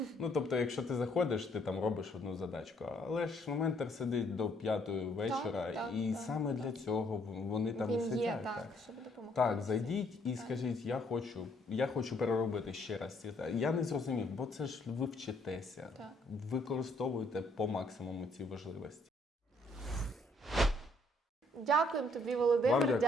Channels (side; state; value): both; normal; correlation 0.67